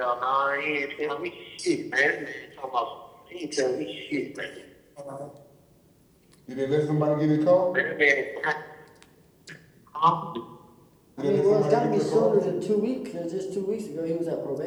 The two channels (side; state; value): both; identical; correlation 1.00